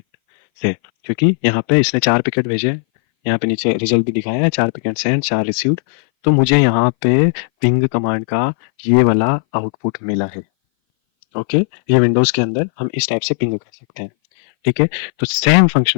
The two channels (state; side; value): silent; right; 60 dB below the other